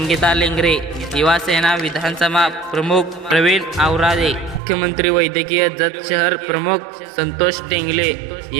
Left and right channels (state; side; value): drops out; left; at 4.6 s